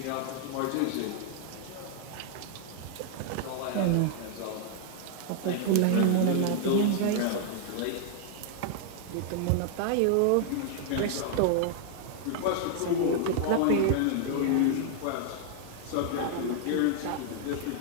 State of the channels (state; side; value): different; both; correlation -0.01